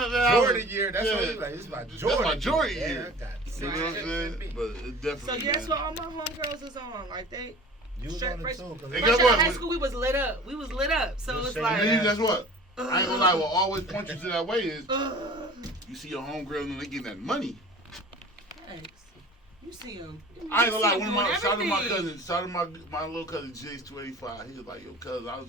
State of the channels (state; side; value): normal; both; correlation 0.43